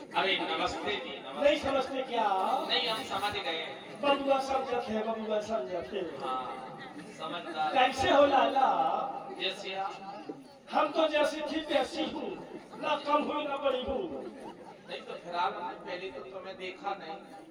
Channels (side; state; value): both; identical; correlation 1.00